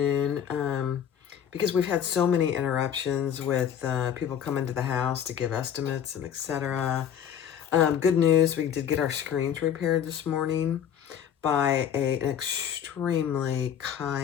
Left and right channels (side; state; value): right; quieter; 9.0 dB